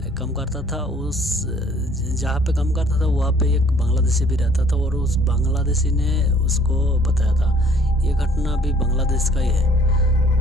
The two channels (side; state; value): both; normal; correlation 0.58